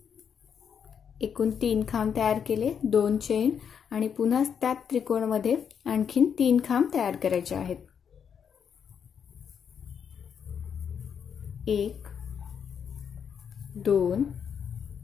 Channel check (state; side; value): quieter; right; 7.4 dB